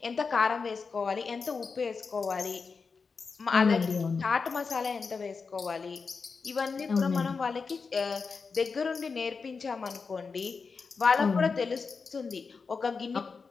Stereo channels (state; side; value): quieter; right; 4.9 dB